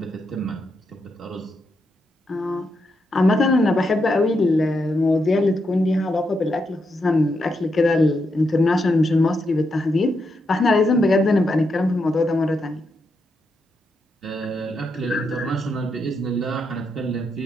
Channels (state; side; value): normal; both; correlation 0.82